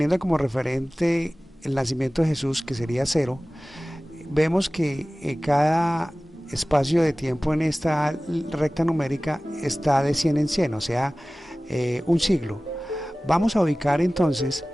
como referente el nacimiento de Jesús, que sería 0, vemos que cada espacio de tiempo en esta recta numérica está de 100 en 100, o sea, un siglo. Vamos a ubicar entonces,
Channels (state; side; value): normal; both; correlation 0.97